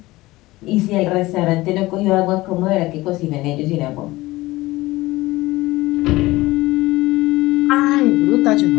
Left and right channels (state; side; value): quieter; right; 19.1 dB